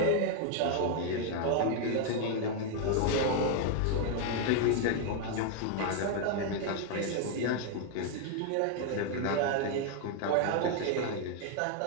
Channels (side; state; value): both; different; correlation 0.00